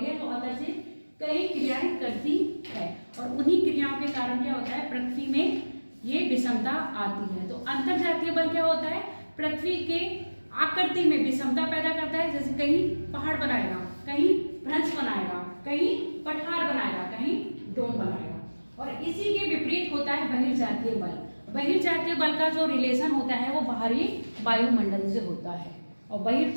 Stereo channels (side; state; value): both; inverted; correlation -1.00